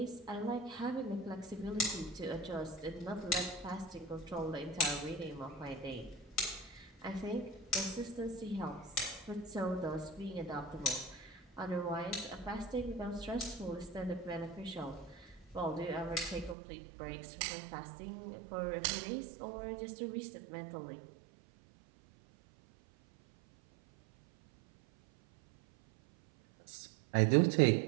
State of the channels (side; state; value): left; drops out; at 16.6 s